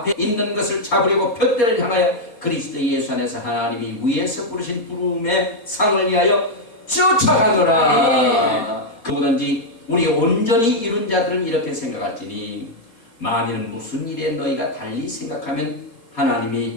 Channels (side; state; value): right; late; 4.2 ms